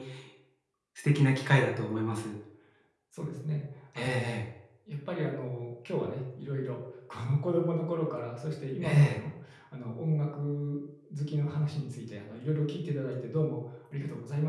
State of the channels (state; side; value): identical; both; correlation 1.00